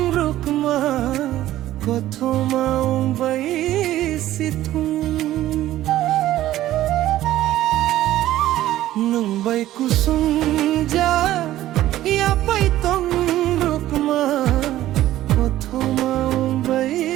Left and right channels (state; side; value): quieter; left; 14.2 dB